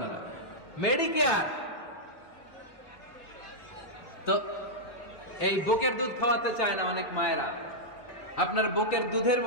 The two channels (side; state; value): right; late; 4.0 ms